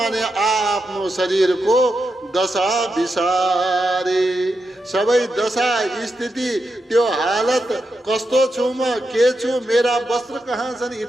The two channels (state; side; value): normal; both; correlation 0.86